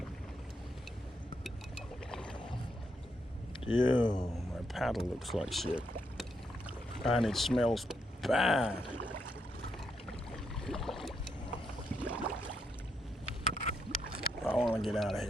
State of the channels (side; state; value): both; normal; correlation 0.79